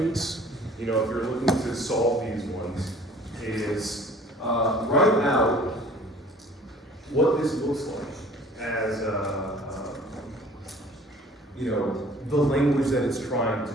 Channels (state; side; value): normal; both; correlation 0.50